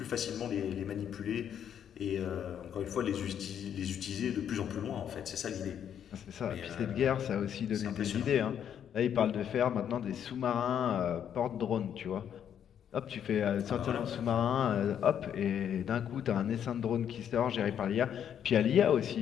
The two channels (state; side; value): quieter; right; 9.1 dB